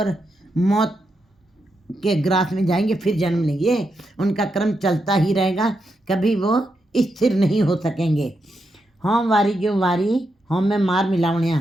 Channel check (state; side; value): normal; both; correlation 0.84